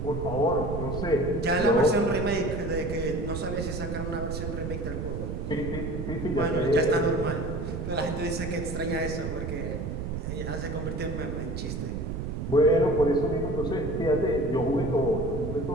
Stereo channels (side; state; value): right; noise; rumble, 4 dB below the sound